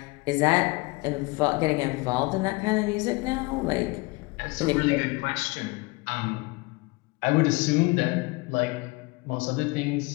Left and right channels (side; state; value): right; quieter; 25.3 dB